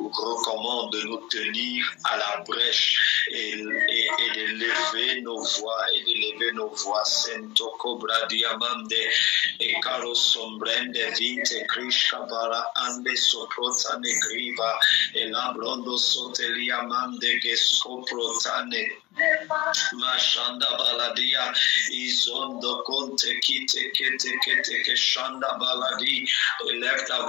recommande de nous tenir à la brèche et de lever nos voix et de lever nos voix. Sento cobra diamande e caro sombrende vite krishka bara ande soprota negriva e lambrondo sotelia mande che scoprotane mashanda baladia izondo conte kite kete que chanda baladi. Élève ta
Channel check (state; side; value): quieter; right; 19.9 dB